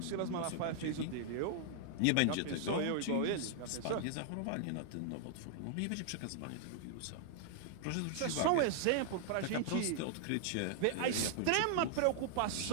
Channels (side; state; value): both; different; correlation -0.01